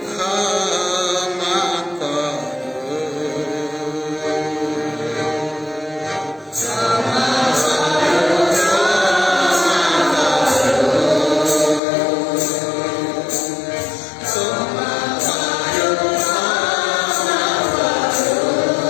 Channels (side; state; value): right; drops out; at 11.8 s